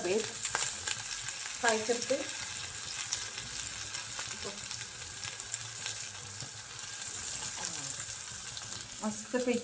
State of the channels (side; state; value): both; identical; correlation 1.00